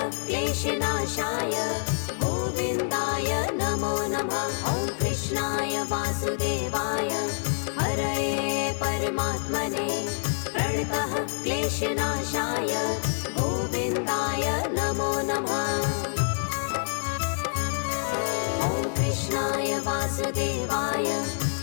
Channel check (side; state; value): right; silent; 56 dB below the other